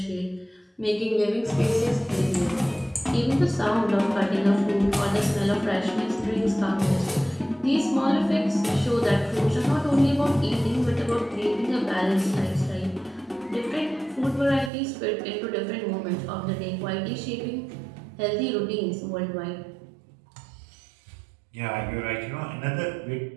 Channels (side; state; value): left; drops out; at 14.7 s